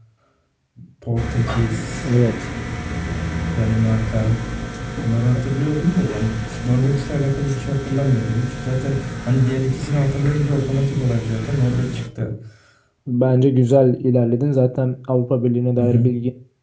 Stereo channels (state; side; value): identical; both; correlation 1.00